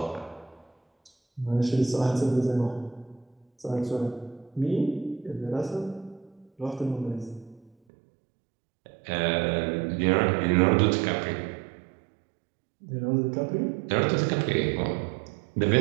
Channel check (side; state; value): left; drops out; at 7.7 s